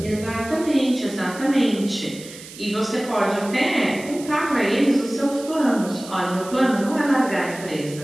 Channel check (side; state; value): right; noise; hiss, 16 dB below the sound